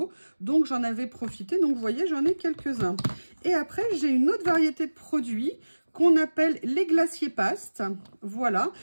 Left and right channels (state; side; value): inverted; both; correlation -1.00